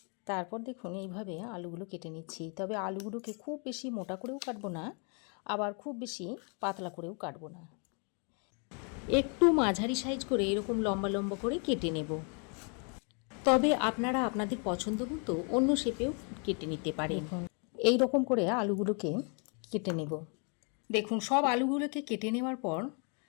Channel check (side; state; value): right; quieter; 38.0 dB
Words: তারপর দেখুন এইভাবে আলুগুলো কেটে নিচ্ছি। তবে আলুগুলোকে খুব বেশি মোটা করেও কাটবো না, আবার খুব বেশি পাতলা করেও কাটবো না। একটু মাঝারি সাইজ করে এরকম লম্বা লম্বা করে কেটে নেব। তবে আপনারা আপনাদের পছন্দ মতো অন্য শেপেও কেটে নিতে পারেন। এই রকম করে আলুগুলোকে কেটে নেব। দেখুন সব আলুগুলোকে কেটে নেওয়ার পর